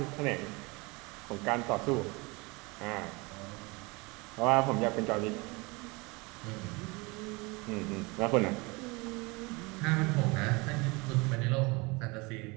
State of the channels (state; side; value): quieter; left; 26.3 dB